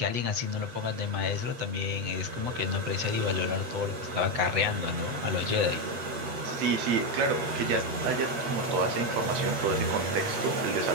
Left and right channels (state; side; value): late; left; 8.5 ms